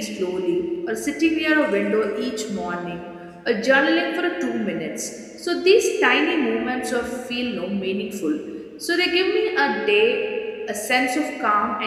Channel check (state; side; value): identical; both; correlation 1.00